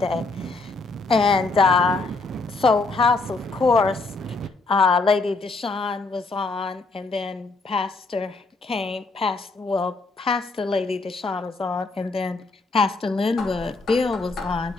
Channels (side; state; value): right; quieter; 3.6 dB